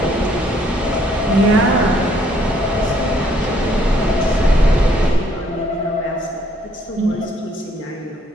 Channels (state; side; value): normal; both; correlation 0.66